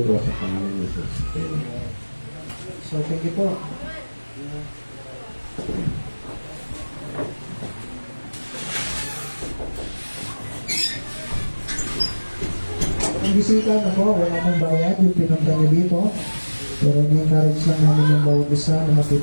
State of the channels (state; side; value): inverted; both; correlation -1.00